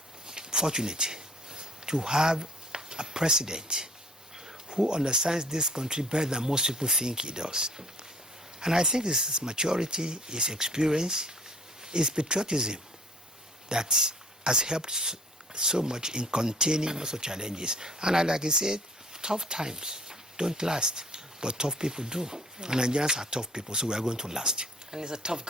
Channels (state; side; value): normal; both; correlation 0.55